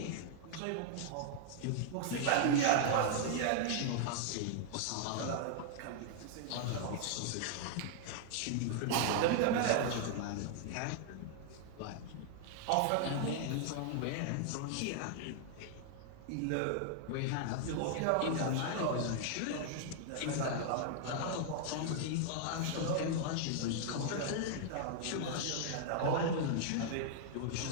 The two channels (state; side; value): different; both; correlation -0.01